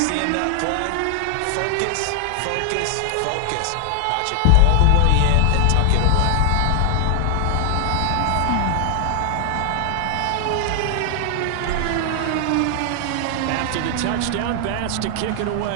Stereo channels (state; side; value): different; both; correlation 0.00